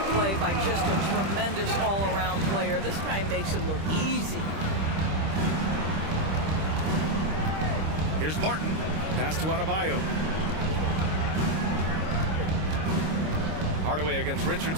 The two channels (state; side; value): late; left; 26 ms